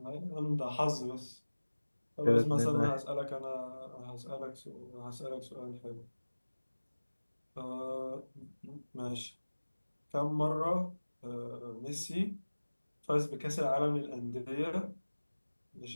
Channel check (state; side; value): inverted; both; correlation -1.00